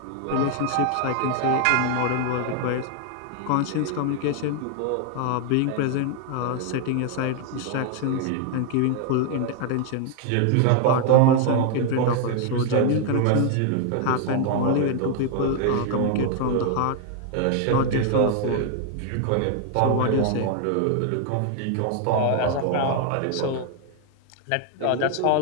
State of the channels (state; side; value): different; both; correlation 0.00